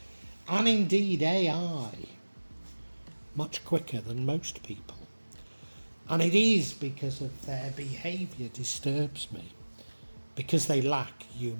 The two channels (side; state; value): both; inverted; correlation -1.00